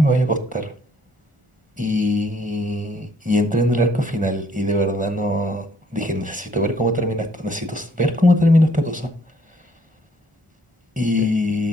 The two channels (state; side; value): normal; both; correlation 0.64